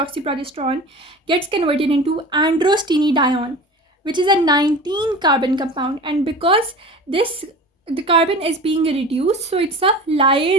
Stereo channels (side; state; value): both; normal; correlation 0.36